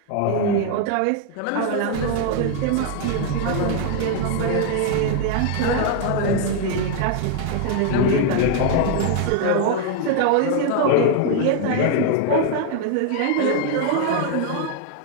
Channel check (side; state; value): both; different; correlation 0.00